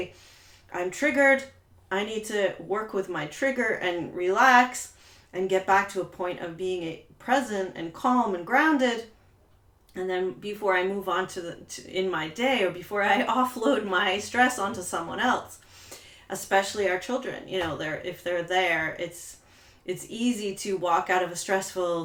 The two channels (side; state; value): both; identical; correlation 1.00